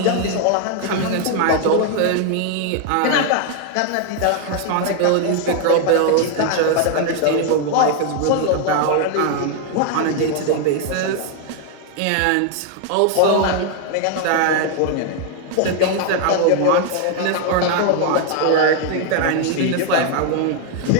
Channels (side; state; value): both; different; correlation 0.00